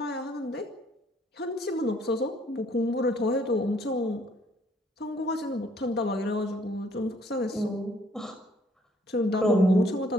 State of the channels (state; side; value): normal; both; correlation 0.64